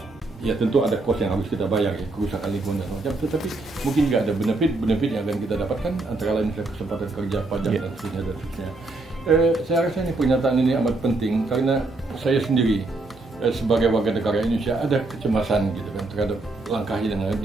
ya tentu ada cost yang harus kita bayar ya, kerusakan lingkungan dan macam, tetapi mungkin juga ada benefit yang akan kita dapatkan, antara lain misalnya kesempatan kerja, pajak dan seterusnya. Saya rasa ini pernyataan ini amat penting karena saya sendiri sebagai warga negara Indonesia ada kecemasan gitu kan terhadap langkah yang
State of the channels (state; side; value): quieter; left; 3.2 dB